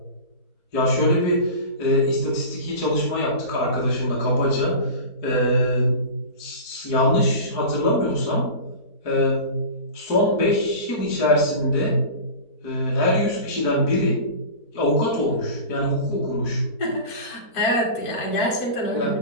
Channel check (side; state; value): right; late; 4.7 ms